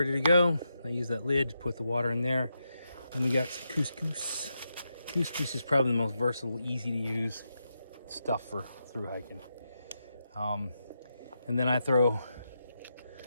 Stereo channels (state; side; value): inverted; both; correlation -0.85